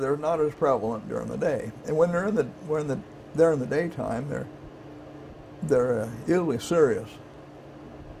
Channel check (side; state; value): both; identical; correlation 1.00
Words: not as prevalent during the day, and when they're in the daytime, they're usually serious.